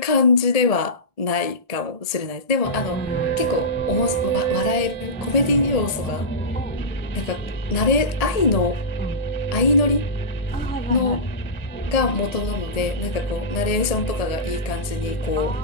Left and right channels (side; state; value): right; late; 1.7 ms